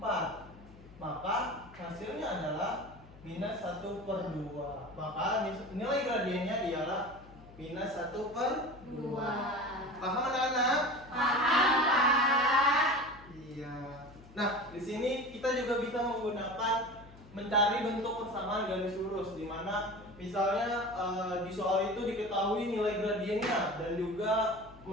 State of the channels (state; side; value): noise; left; hum, 21 dB below the sound